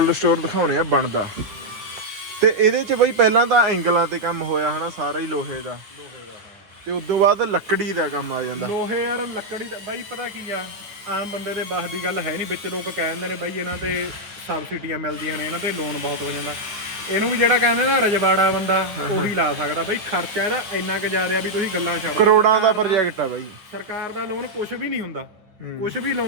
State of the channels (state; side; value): late; left; 9.5 ms